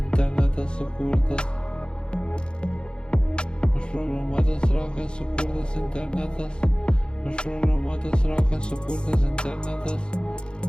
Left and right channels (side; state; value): right; late; 0.051 ms